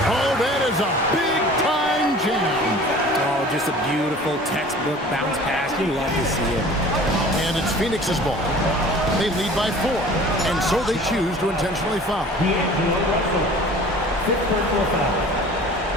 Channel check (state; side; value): normal; both; correlation 0.45